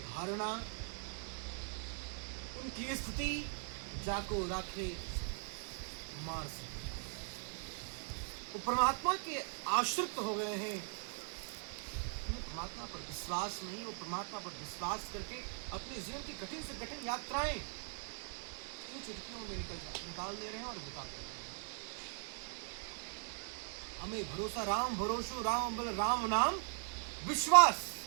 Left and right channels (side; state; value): left; silent; 51 dB below the other